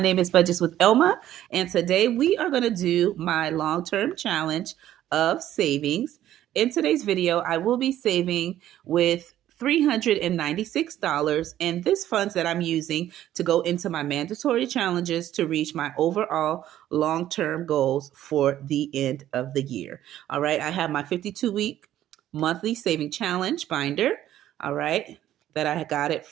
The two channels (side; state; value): left; quieter; 12.5 dB